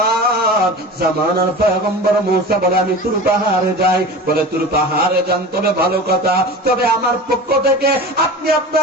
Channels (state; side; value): normal; both; correlation 0.33